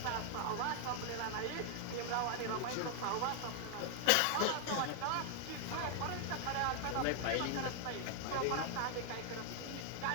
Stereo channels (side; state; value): both; different; correlation 0.00